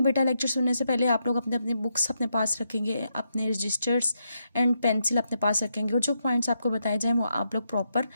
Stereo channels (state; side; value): inverted; both; correlation -0.82